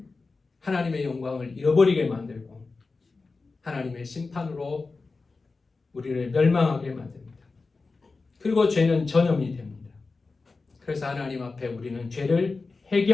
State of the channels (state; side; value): quieter; right; 4.0 dB